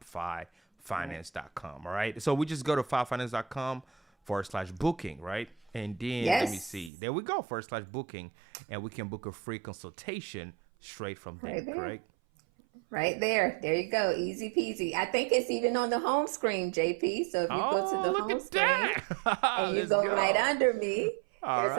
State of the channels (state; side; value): drops out; left; at 6.9 s